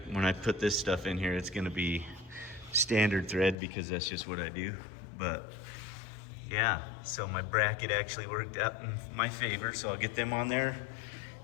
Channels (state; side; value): drops out; right; at 3.6 s